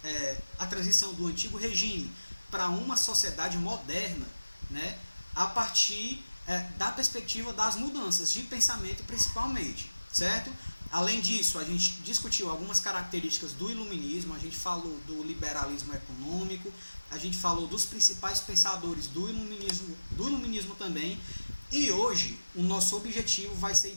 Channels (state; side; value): inverted; both; correlation -1.00